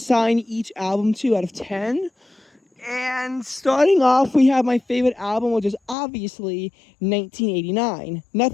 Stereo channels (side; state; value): right; drops out; at 6.0 s